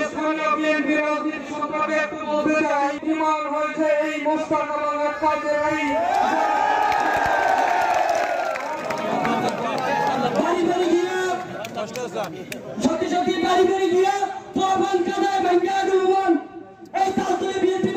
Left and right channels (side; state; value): both; identical; correlation 1.00